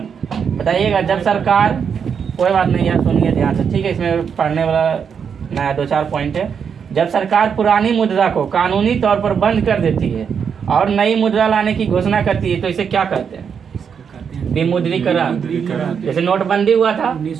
बताइएगा, जब सरकार, कोई बात नहीं यार, सुनिए ध्यान से। ठीक है। इसमें पढ़ने वाला नया 2-4 पॉइंट है। जब सरकार पुरानी मुद्रा को कानूनी तौर पर बंद कर देती है और नई मुद्रा लाने की घोषणा करती है, तो इसे क्या कहते हैं? विमुद्रीकरण। जैसे नोटबंदी हुआ था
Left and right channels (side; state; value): left; quieter; 6.9 dB